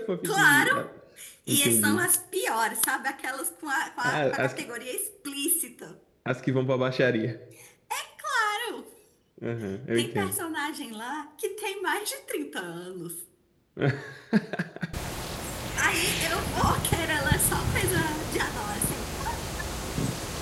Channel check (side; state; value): both; identical; correlation 1.00